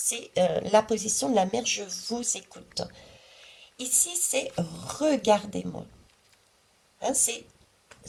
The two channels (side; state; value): both; identical; correlation 1.00